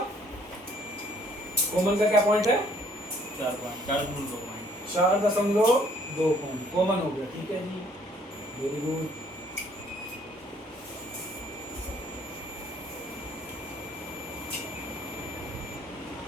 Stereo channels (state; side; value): normal; both; correlation 0.62